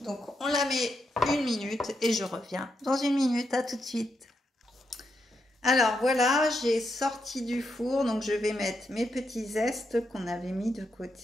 Donc on la met 1 minute et je reviens dans 1 minute. À tout de suite. Alors voilà, j'ai sorti du four, donc je vais mettre mes petits zestes qu'on avait mis de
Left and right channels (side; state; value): both; normal; correlation 0.82